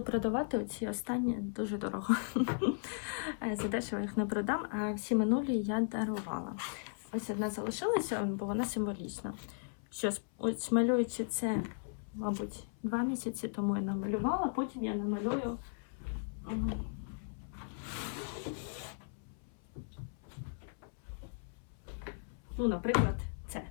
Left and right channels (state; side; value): silent; right; 53 dB below the other